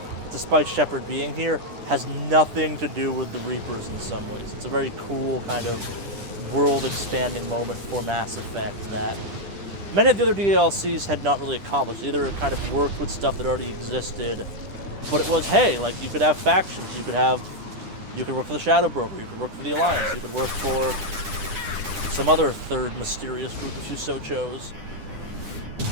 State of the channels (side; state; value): left; late; 10 ms